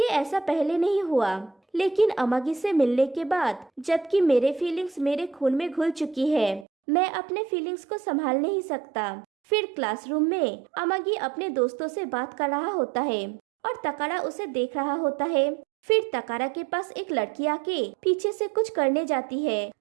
ऐसा पहले नहीं हुआ, लेकिन अमागी से मिलने के बाद जबकि मेरे फीलिंग्स मेरे खून में घुल चुकी है, मैं अपने फीलिंग्स को संभाल नहीं सकता। फिर क्लासरूम में अमागी अपने दोस्तों से बात कर रहा होता है और तकारा उसे देख रहा होता है। फिर तकारा के पास एक लड़की आके पीछे से कुछ करने जाती है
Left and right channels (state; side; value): drops out; left; at 6.7 s